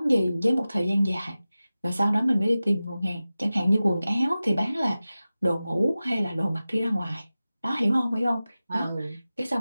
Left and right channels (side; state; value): both; inverted; correlation -0.96